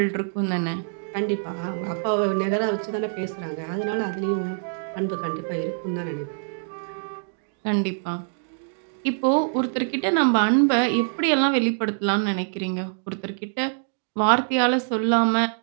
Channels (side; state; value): left; silent; digital silence